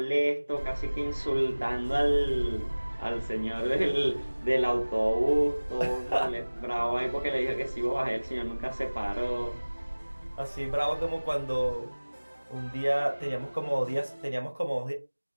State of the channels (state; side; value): inverted; both; correlation -1.00